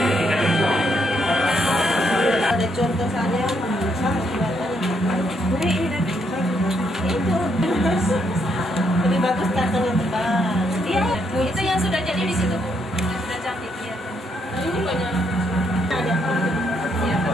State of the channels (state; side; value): normal; both; correlation 0.75